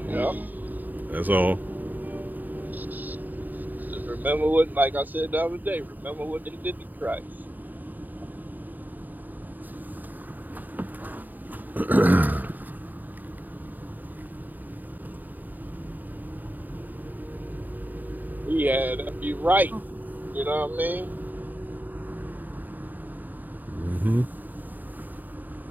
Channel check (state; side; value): late; left; 0.086 ms